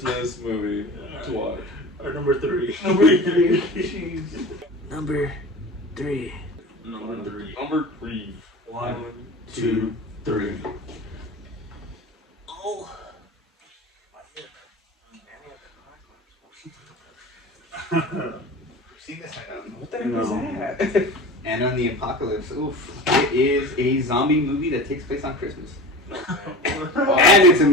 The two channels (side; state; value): both; normal; correlation 0.34